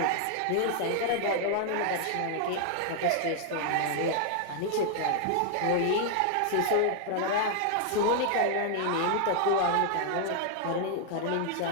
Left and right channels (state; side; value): different; both; correlation 0.00